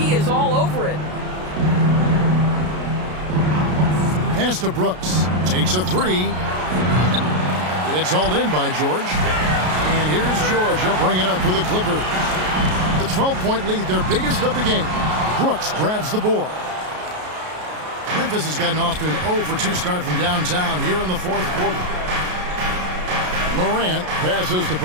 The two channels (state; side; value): late; left; 33 ms